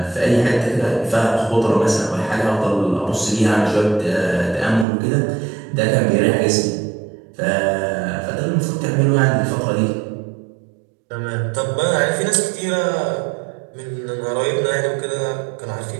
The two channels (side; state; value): left; drops out; at 4.9 s